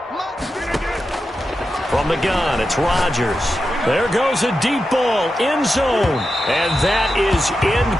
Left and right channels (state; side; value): normal; both; correlation 0.90